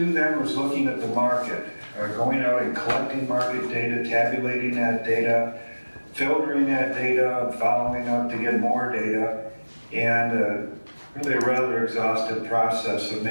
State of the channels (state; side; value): inverted; both; correlation -1.00